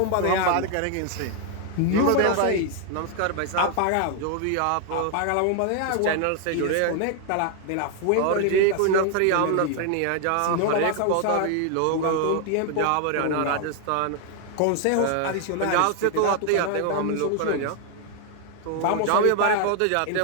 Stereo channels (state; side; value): different; both; correlation 0.00